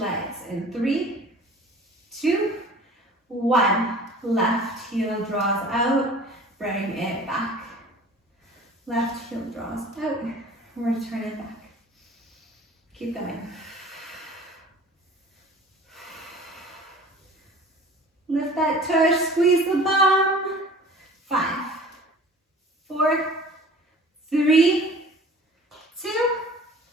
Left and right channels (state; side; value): normal; both; correlation 0.45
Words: in 3, 2, 1. Left heel draws out, Bring it back. Left heel draws out. Return it back. Keep going. Lift that tush, squeeze the bum. 5, 4, 3, 2,